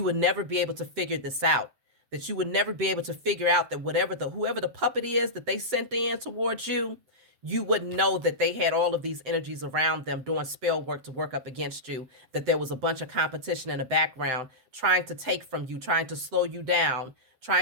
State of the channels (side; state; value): left; late; 7.7 ms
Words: would never be able to figure this out, that you would never be able to figure out that whoever the puppet is that they sent in towards you, you wouldn't know that they had all of these energies around them doing spell work to work up against you, that there was a bunch of competition in the background trying to take from you, trying to slow you down,